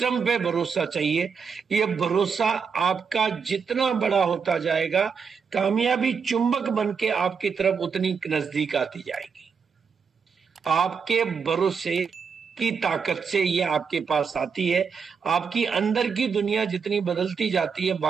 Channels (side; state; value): left; quieter; 6.0 dB